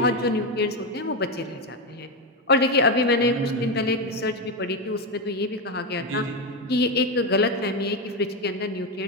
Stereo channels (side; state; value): both; normal; correlation 0.10